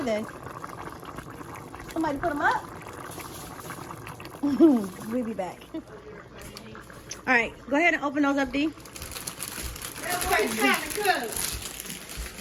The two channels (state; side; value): identical; both; correlation 1.00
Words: they? Somebody put them up? We'll be back. All right, go ahead and open those up, Dee.